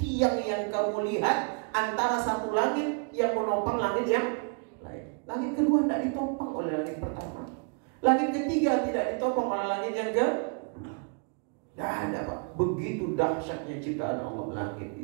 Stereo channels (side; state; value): left; quieter; 38.1 dB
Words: yang kamu lihat antara satu langit yang menopang langit yang lain. Langit kedua tidak ditopang oleh langit pertama. Langit ketiga tidak ditopang oleh langit yang ke. Tidak ada Pak. Begitu dahsyatnya ciptaan Allah langit